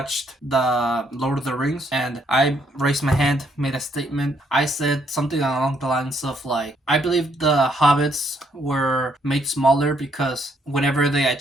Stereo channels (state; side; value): normal; both; correlation 0.71